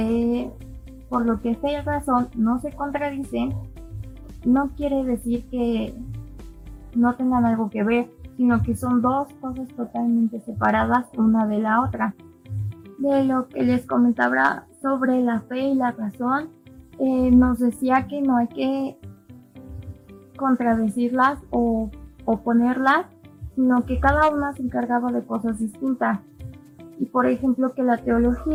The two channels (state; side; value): identical; both; correlation 1.00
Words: por lo que fe y razón no se contradicen, no quiere decir que no tengan algo que ver, sino que son dos cosas totalmente separadas una de la otra. De lo que les comentaba sobre la fe y la razón, nos decía que no hay que contradecirlas o oponerlas, sino que cada una se encargaba de cosas distintas. Y por ejemplo que la